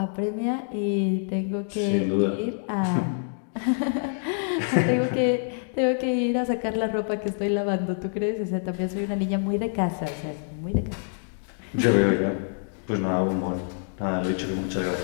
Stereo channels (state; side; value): silent; right; digital silence